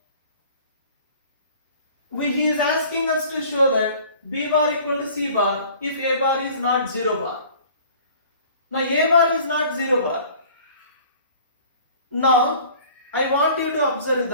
he is asking us to show that b bar equal to c bar if a bar is not 0 bar. Now, a bar is not 0 bar. Now, I want you to observe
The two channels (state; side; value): inverted; both; correlation -0.49